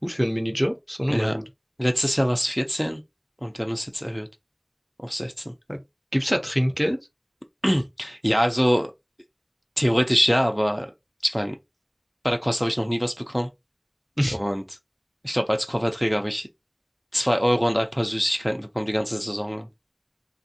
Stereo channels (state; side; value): identical; both; correlation 1.00